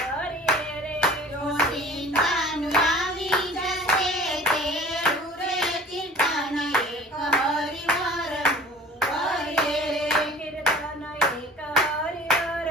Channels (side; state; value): both; normal; correlation 0.46